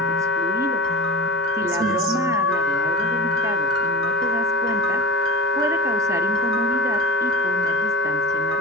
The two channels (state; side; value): normal; both; correlation 0.31